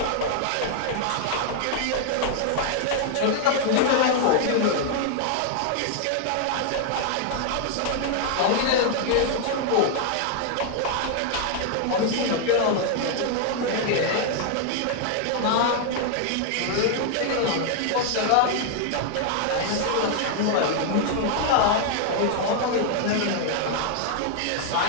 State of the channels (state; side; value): different; both; correlation 0.00